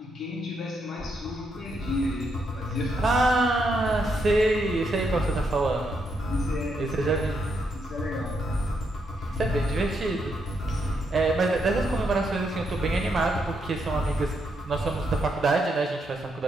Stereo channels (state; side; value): normal; both; correlation 0.79